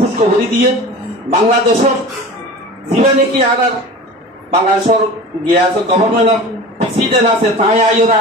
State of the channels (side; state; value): both; normal; correlation 0.35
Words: দিয়ে বাংলাদেশের যিবা নাকি আর বাংলাদেশের গিয়া আছে গভর্নমেন্টের প্রেসিডেন্ট আছে তাই আইর